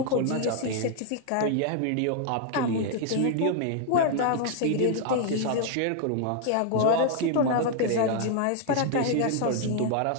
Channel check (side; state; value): both; different; correlation 0.00